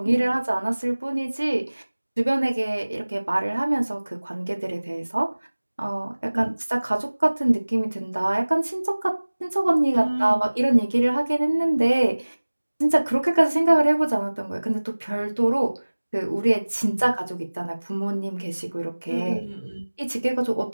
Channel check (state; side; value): inverted; both; correlation -1.00